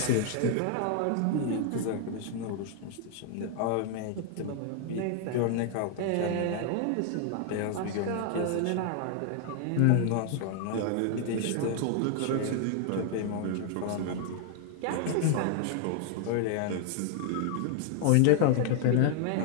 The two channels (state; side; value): different; both; correlation 0.00